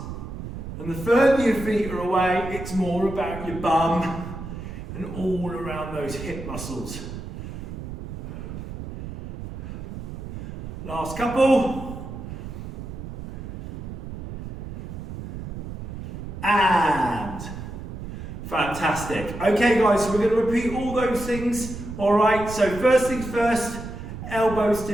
and the further your feet are away, it's more about your bum and all around those hip muscles. Last couple. And fantastic. Okay guys, so we're going to repeat all those things. Alright, so first things first, elbows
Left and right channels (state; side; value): noise; right; rumble, 9 dB below the sound